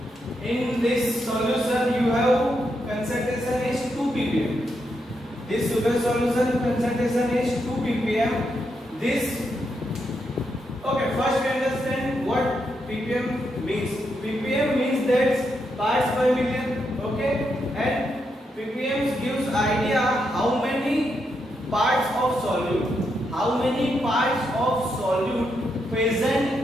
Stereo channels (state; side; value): normal; both; correlation 0.82